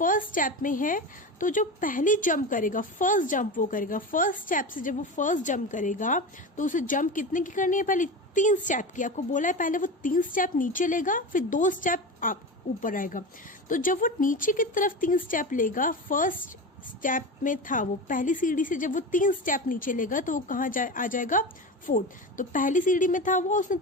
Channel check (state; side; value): normal; both; correlation 0.25